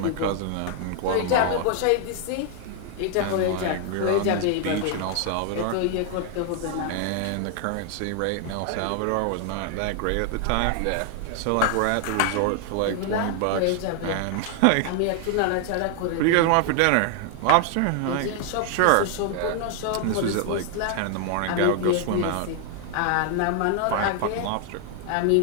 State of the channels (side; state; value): both; different; correlation 0.00